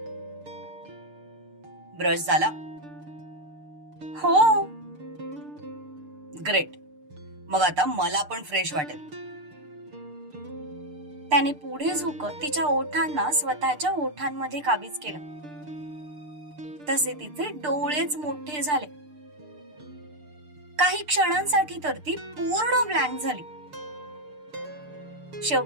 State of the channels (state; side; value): late; left; 6.7 ms